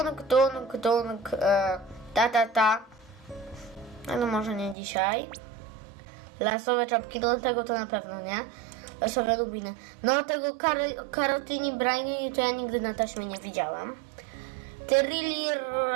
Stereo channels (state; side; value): drops out; left; at 4.8 s